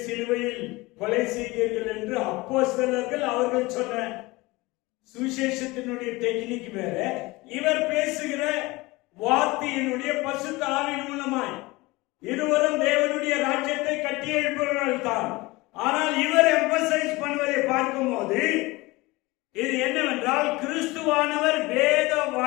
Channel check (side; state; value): right; quieter; 22.0 dB